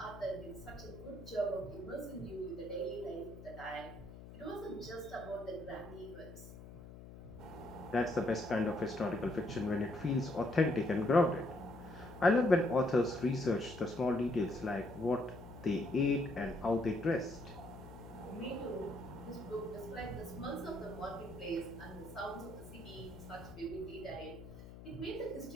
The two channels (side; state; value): left; noise; hum, 15 dB below the sound